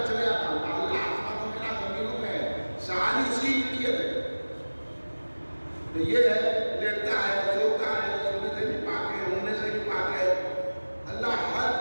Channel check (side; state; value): both; inverted; correlation -1.00